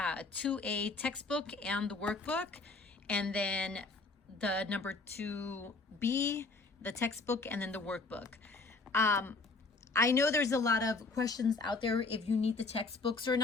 textbook and the workbook, and then the number 2B, the textbook, and then the workbook. I know there's a lot of questions out there if you need the textbooks or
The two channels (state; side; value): quieter; right; 3.7 dB